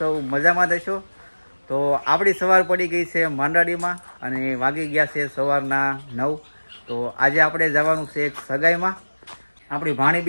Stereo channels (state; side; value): inverted; both; correlation -1.00